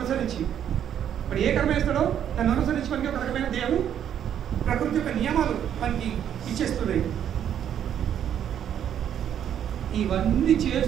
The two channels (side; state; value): left; quieter; 9.6 dB